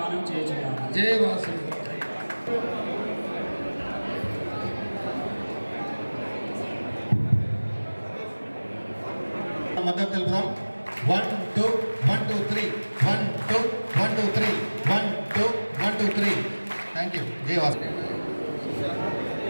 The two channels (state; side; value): inverted; both; correlation -1.00